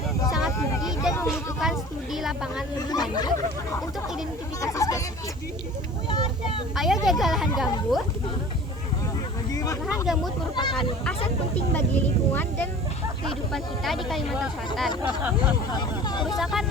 sangat tinggi dan membutuhkan studi lapangan lebih lanjut untuk identifikasi spesifik. Ayo jaga lahan gambut. Lahan gambut merupakan aset penting bagi lingkungan dan kehidupan kita di Kalimantan Selatan. Kerusakan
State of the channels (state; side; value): normal; both; correlation 0.42